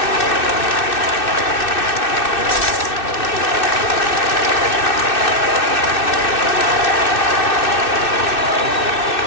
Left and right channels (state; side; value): late; right; 2.6 ms